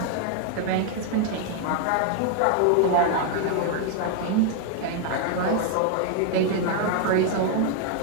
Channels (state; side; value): different; both; correlation 0.00